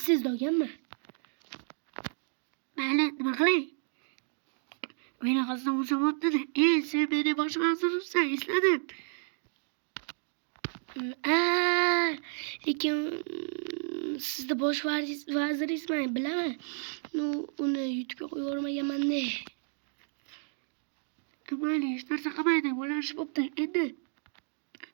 olganman. Mayli, nima qilay? Meni hassam bo'lsa bo'pti-da. Sen meni bosh vazirsan, esladim. Lekin sizda bosh vaziringizman, bilaman. Uni YouTube'ga qo'yib yubormaganman-da. Mayli, hech narsa qilmaydi, bo'lishib bo'pti. Endi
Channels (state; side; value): silent; left; digital silence